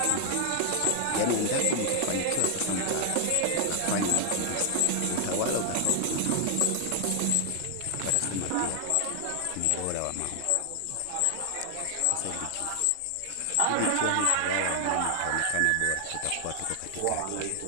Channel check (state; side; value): different; both; correlation 0.00